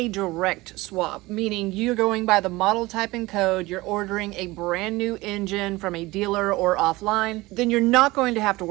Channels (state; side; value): quieter; left; 20.5 dB